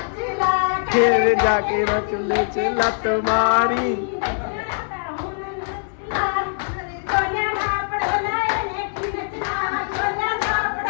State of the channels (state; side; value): silent; right; 64 dB below the other